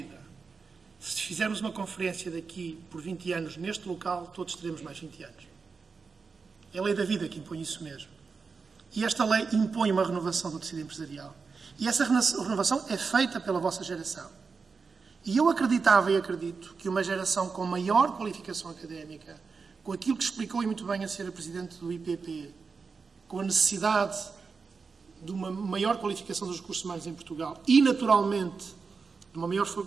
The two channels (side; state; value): left; quieter; 4.9 dB